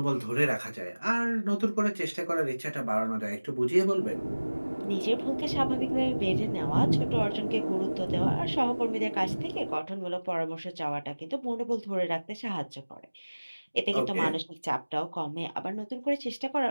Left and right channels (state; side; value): inverted; both; correlation -1.00